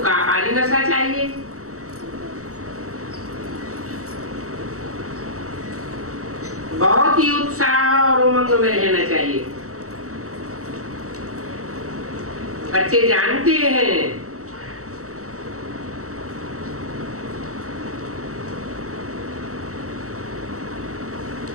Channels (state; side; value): late; left; 0.65 ms